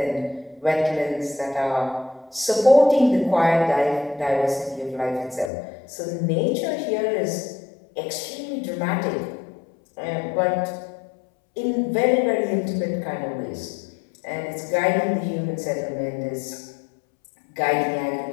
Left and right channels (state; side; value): drops out; right; at 5.5 s